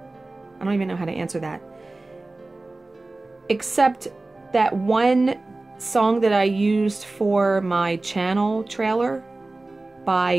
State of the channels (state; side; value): quieter; left; 3.1 dB